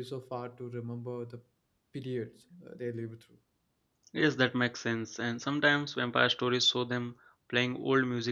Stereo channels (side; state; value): both; identical; correlation 1.00